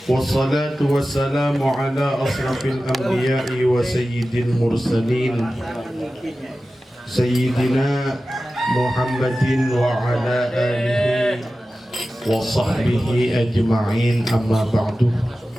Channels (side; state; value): both; normal; correlation 0.95